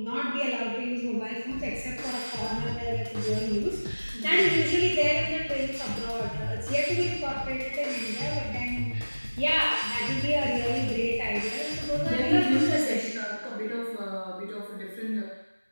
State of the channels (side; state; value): both; inverted; correlation -1.00